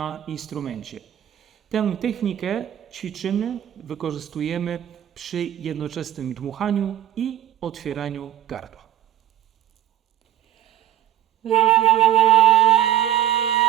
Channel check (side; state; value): left; quieter; 11.9 dB